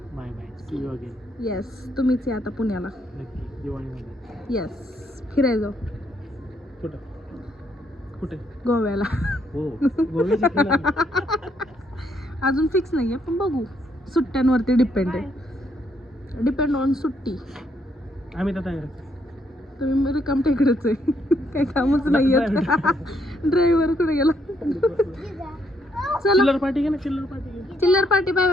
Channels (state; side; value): normal; both; correlation 0.73